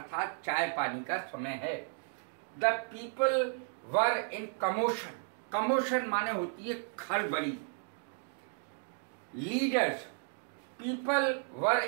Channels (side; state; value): left; silent; 55 dB below the other